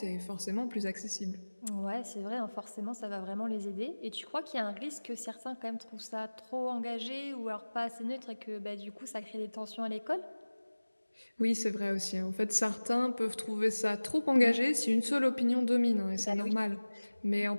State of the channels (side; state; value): both; inverted; correlation -1.00